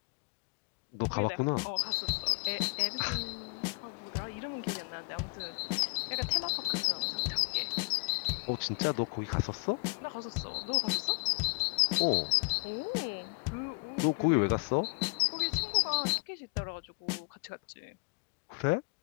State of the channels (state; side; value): quieter; right; 36.3 dB